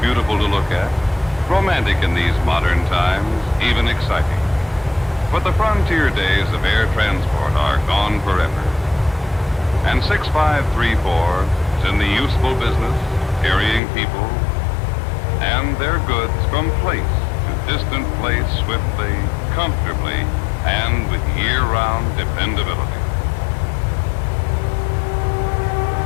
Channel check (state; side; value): drops out; right; at 13.8 s